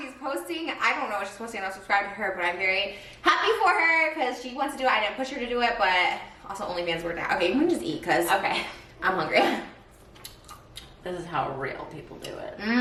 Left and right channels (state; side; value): identical; both; correlation 1.00